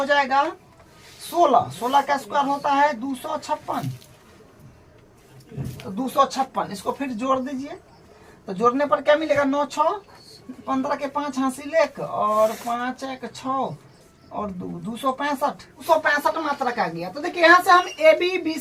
जाएगा 16, 16 का स्क्वायर होता है 256, तो 256 इसको फिर जोड़ दीजिए। तो जोड़ने पर क्या मिलेगा, 9 6 15 के 5 हासिल 1 और 5 1 6 और 265 मात्रा का गया। तो देखिए यहाँ से हम ए बी बी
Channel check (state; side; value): identical; both; correlation 1.00